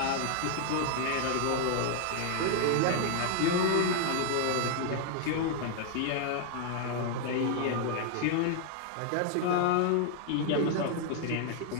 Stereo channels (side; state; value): both; different; correlation 0.00